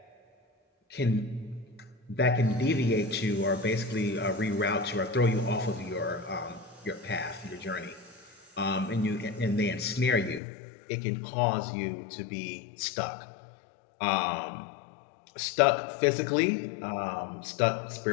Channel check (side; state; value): right; drops out; at 10.4 s